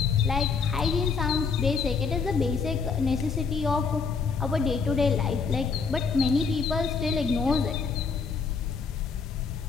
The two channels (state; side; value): quieter; right; 5.3 dB